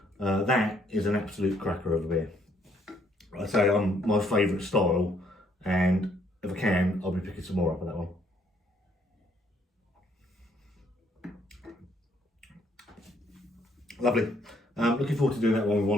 That is an absolute cracker of a beer. I say my favourite style, and if I can, I'll be picking some more up of that one. Lovely. Looking forward to doing that one with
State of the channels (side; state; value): both; normal; correlation 0.67